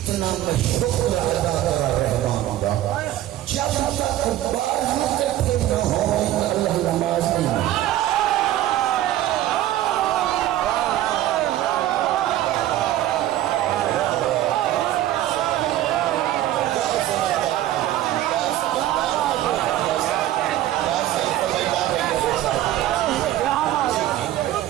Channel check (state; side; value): quieter; left; 13.6 dB